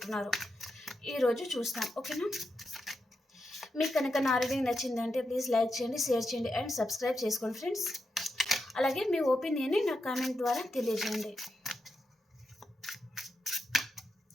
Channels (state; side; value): normal; both; correlation 0.86